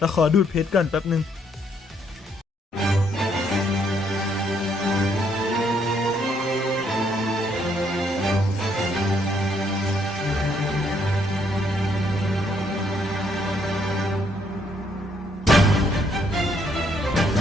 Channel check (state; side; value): normal; both; correlation 0.70